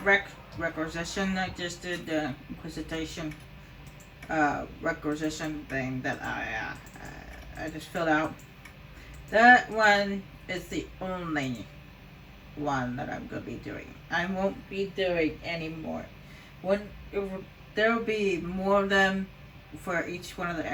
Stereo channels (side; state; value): both; identical; correlation 1.00